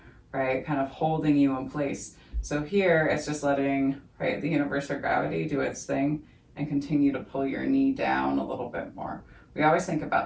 right? Kind of holding you in place. So here it's just letting, right, the universe or gravity do its thing and continue to pull your knee down a little bit more. We always think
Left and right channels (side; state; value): both; identical; correlation 1.00